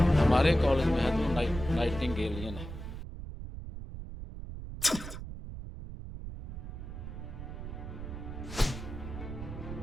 हमारे कॉलेज में है तो नाइटिंगेलियन है।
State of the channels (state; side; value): noise; right; rumble, 9 dB below the sound